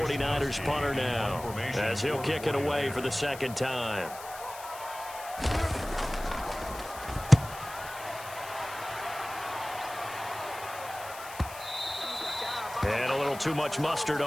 punter now, as he'll kick it away for the second time. And a little too much mustard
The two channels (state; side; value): noise; left; hiss, 15 dB below the sound